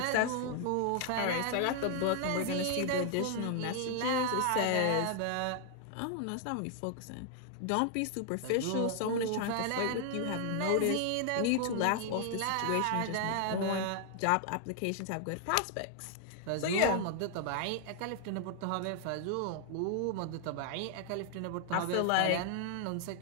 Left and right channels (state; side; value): different; both; correlation 0.00